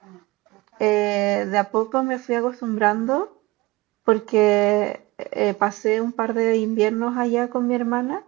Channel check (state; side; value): quieter; left; 21.5 dB